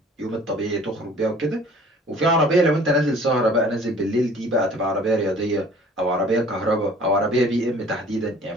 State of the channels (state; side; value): normal; both; correlation 0.51